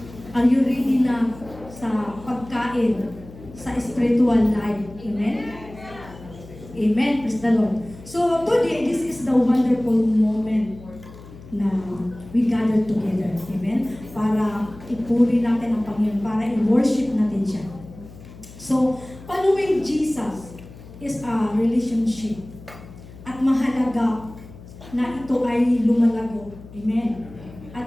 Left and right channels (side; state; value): left; noise; hum, 18 dB below the sound